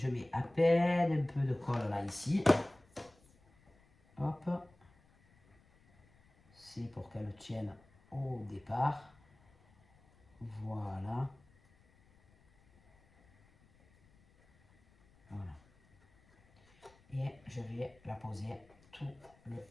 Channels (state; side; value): noise; left; rumble, 30 dB below the sound